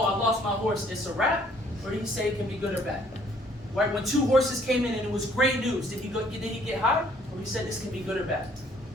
I lost my horse, it's a wrap? Or did he say it can be good or bad? Right? When 2 horses came in and it was great news, did he get high? Or he said this can be good or bad?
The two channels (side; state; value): both; normal; correlation 0.61